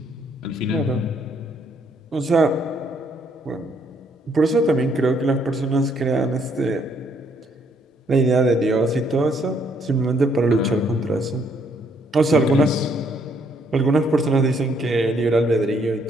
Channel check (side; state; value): both; normal; correlation 0.69